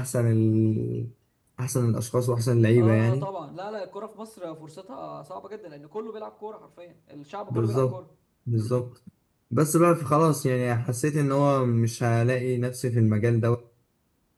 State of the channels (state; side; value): identical; both; correlation 1.00